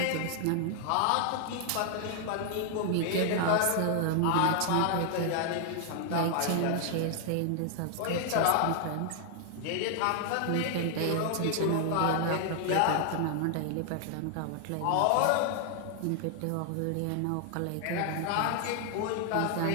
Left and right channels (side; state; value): both; different; correlation 0.00